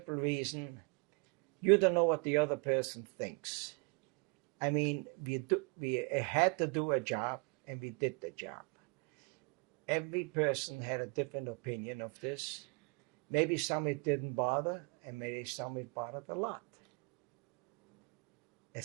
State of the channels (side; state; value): left; quieter; 33.5 dB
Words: reason you don't know what the other person thinks. I mean, we had to do a job, and we did the job. Every person had a different opinion of this. Maybe some it didn't bother, and maybe some it bothered a lot.